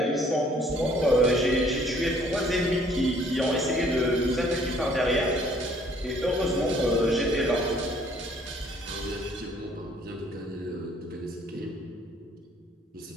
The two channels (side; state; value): both; normal; correlation 0.60